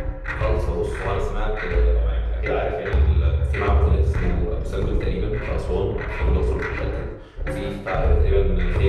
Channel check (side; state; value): both; identical; correlation 1.00